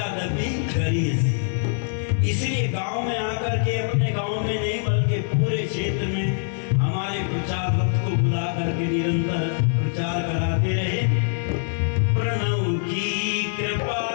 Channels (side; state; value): right; silent; digital silence